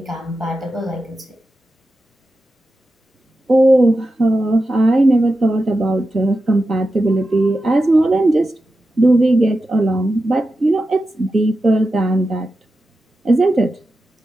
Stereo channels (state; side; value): normal; both; correlation 0.91